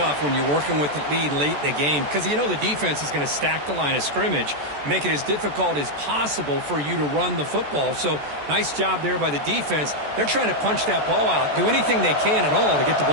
when you're working with the lead late in the game because you know the defense is going to stack the line of scrimmage, make it as difficult as possible for you to run the football. So nice job there by the defense. They're trying to punch that ball out, do anything they can at all to get the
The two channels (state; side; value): late; left; 14 ms